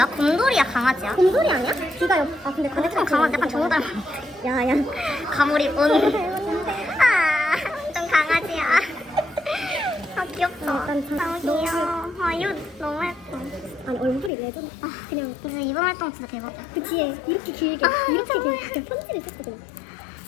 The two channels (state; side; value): drops out; right; at 14.3 s